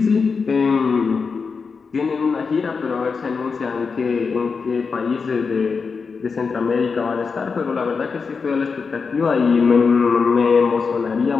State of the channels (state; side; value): quieter; right; 5.1 dB